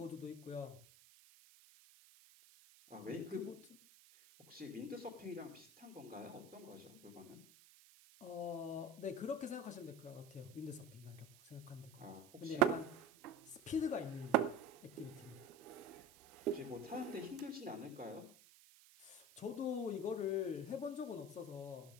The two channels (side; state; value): right; noise; hiss, 22 dB below the sound